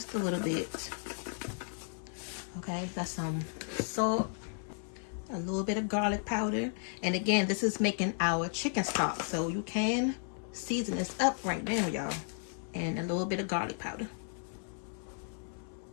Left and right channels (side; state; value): right; silent; 55 dB below the other